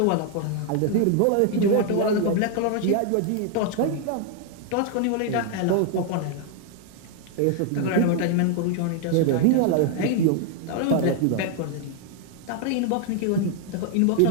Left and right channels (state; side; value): different; both; correlation 0.00